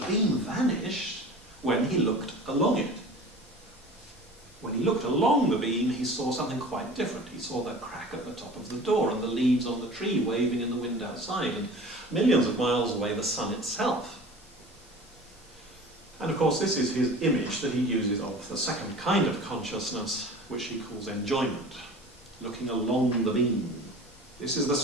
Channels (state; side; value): normal; both; correlation 0.40